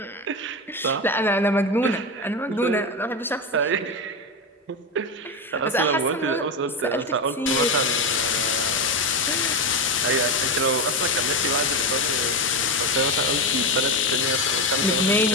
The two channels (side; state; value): both; normal; correlation 0.15